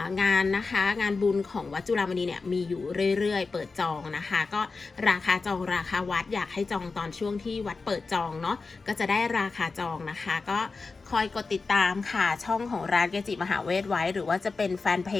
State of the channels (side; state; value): right; quieter; 4.2 dB